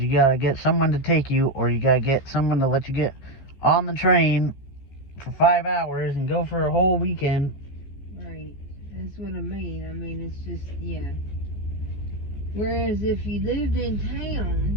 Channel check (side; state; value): right; late; 14 ms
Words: gotta get someone to take you, or you gotta get someone to let you get on the train for 5 hours and go for a whole weekend. Right. That's what I mean. I mean, it's just, yeah. Whereas if you lived in